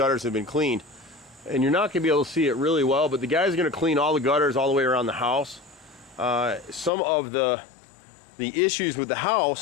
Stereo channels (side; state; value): right; drops out; at 6.9 s